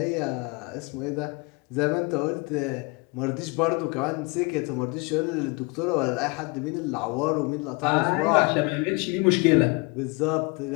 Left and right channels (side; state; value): right; quieter; 28.1 dB